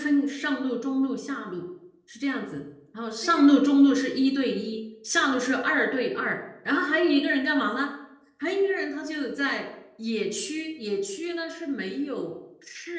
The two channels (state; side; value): identical; both; correlation 1.00